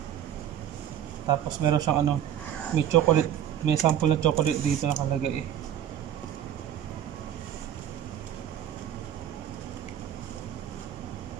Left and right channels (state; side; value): quieter; left; 10.4 dB